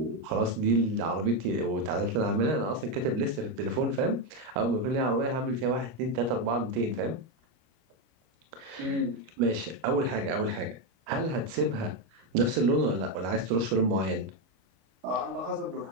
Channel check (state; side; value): late; left; 25 ms